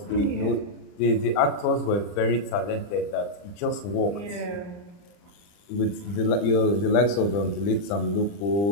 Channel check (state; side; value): late; right; 40 ms